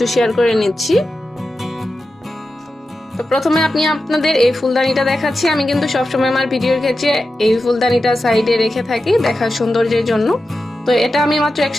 শেয়ার করে নিচ্ছি। তো প্রথমে আপনাদের এই ফুলদানিটা দেখাচ্ছি। আমি কিন্তু সবসময় আমার ভিডিওর ক্ষেত্রে এই ফুলদানিটা সাইডে রেখে থাকি দেখার সৌন্দর্যের জন্য। তো এটা আমি মাত্র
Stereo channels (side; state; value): both; normal; correlation 0.92